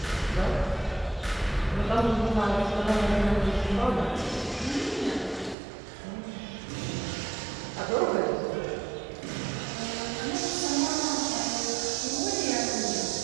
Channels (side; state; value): left; drops out; at 5.6 s